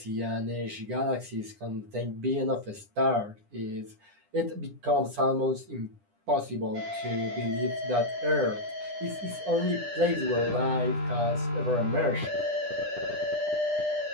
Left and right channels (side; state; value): left; late; 9.9 ms